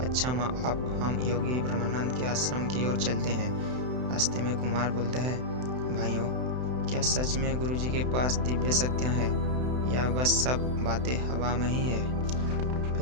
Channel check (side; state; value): left; late; 31 ms